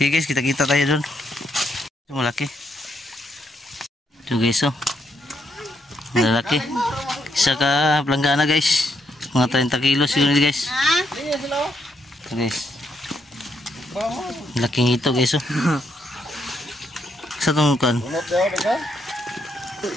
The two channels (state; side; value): normal; both; correlation 0.77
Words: guys, kita-kita tayo dun. Malaki. Ito guys oh. Malaki. Isa ka planggana guys. Mga 30 kilos siguro guys. Ito guys. Laking ito guys oh. Sa itong kan.